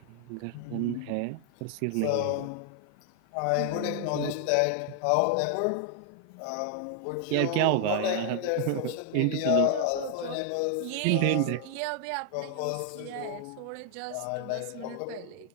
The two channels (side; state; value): both; different; correlation 0.00